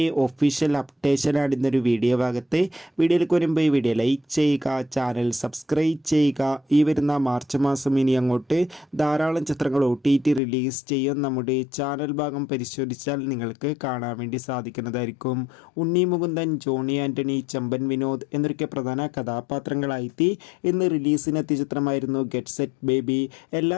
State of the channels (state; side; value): drops out; right; at 10.4 s